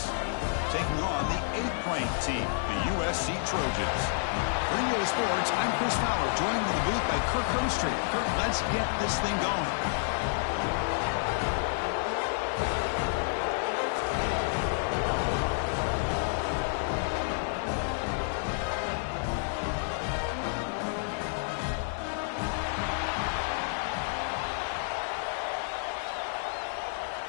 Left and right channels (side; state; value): right; silent; 58 dB below the other